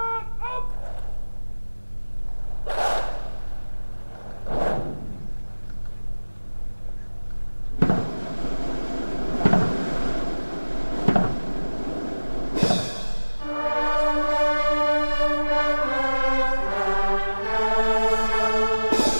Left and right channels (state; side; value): inverted; both; correlation -1.00